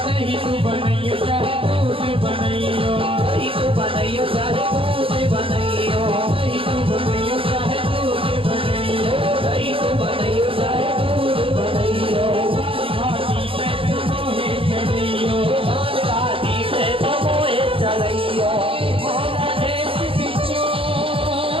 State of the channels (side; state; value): left; late; 0.26 ms